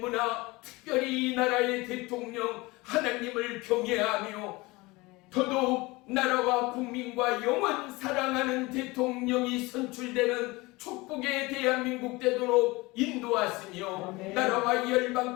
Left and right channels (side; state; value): right; quieter; 22.7 dB